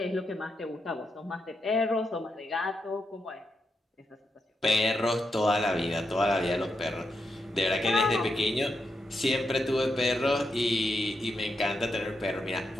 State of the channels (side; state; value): both; normal; correlation 0.84